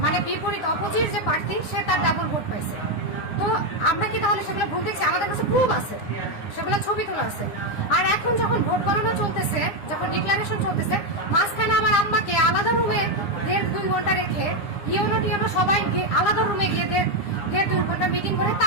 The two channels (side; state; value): right; late; 9.7 ms